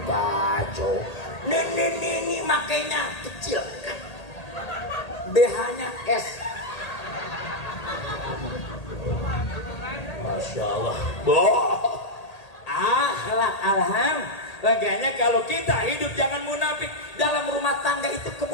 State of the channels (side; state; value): right; late; 1.8 ms